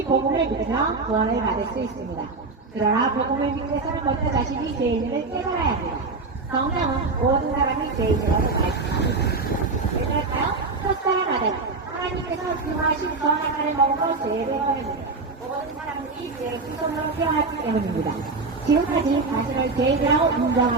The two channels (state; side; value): quieter; left; 3.9 dB